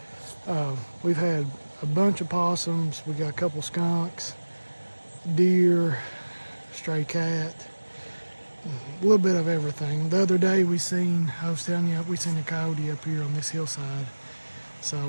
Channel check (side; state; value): both; inverted; correlation -1.00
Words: We've had a bunch of possums. We got a couple skunks, deer, stray cat, a little bit of everything. The other day I was telling you, we seen a coyote up here on this hillside. So